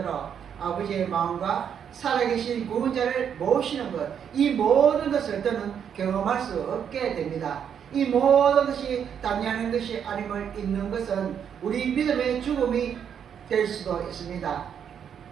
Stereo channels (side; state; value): left; quieter; 8.2 dB